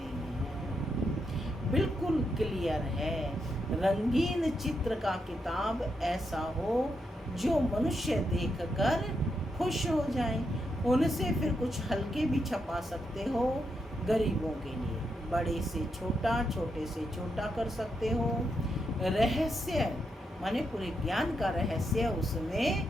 हैं। बिल्कुल क्लियर है। रंगीन चित्र का किताब ऐसा हो जो मनुष्य देखकर खुश हो जाए। उनसे फिर कुछ हल्के भी छपा सकते हो गरीबों के लिए। बड़े से छोटा, छोटे से छोटा कर सकते हो। रहस्य माने पूरे ज्ञान का रहस्य उसमें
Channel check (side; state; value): both; normal; correlation 0.82